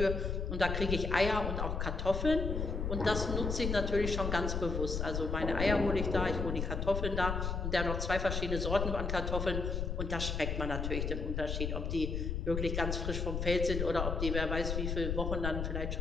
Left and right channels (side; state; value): left; noise; rumble, 2 dB below the sound